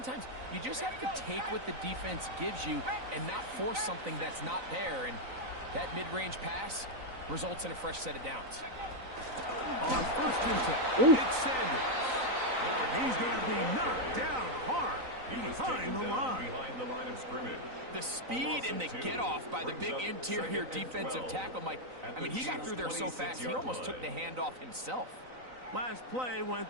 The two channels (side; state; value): left; late; 3.9 ms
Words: you just have to take what the defense gives you and not force something that's not there, and that mid-range pass results in a fresh set of downs. On first and 10, it's Sanders. And he's going to be knocked down hard behind the line of scrimmage. The speed and the get-off by the big interior defensive tackle, Mike. I mean, he got through there so fast, he almost took the handoff himself. Last play went